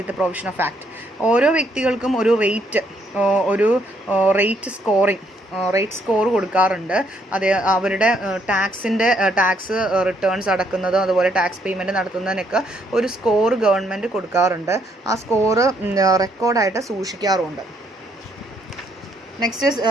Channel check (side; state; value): both; normal; correlation 0.71